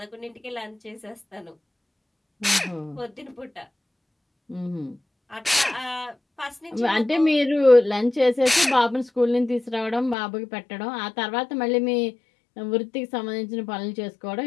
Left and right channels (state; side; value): drops out; right; at 10.2 s